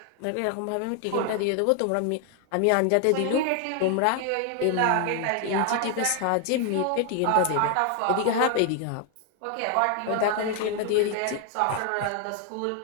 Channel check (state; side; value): different; both; correlation 0.00